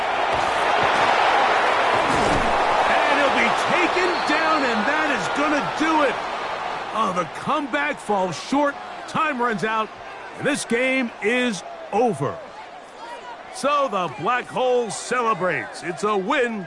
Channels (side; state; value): both; identical; correlation 1.00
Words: And he'll be taken down, and that is going to do it. Oh, the comeback falls short. Time runs out, and this game is over. So the Black Hole celebrates. It's a